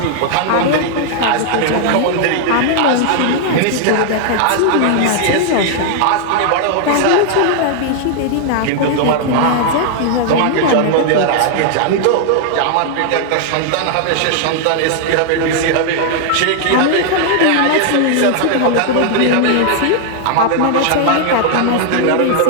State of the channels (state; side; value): different; both; correlation 0.00